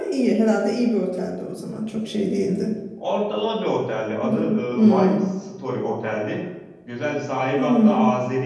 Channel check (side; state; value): both; identical; correlation 1.00